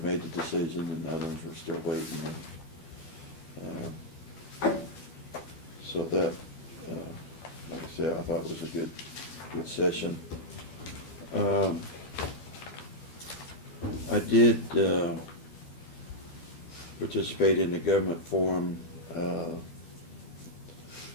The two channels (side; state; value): right; late; 12 ms